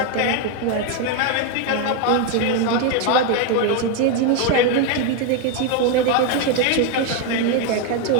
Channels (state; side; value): different; both; correlation 0.02